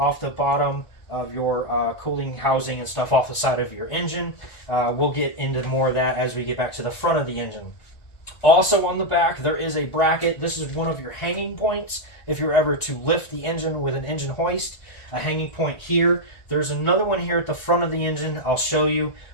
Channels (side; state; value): right; late; 1.5 ms